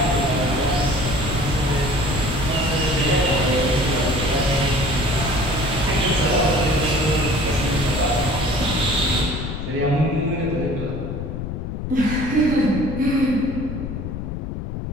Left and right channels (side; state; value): left; noise; rumble, 5 dB below the sound